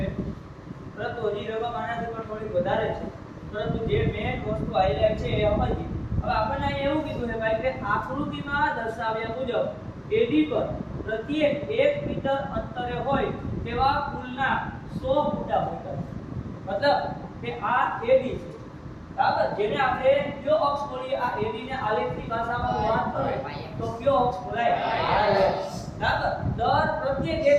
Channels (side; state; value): both; identical; correlation 1.00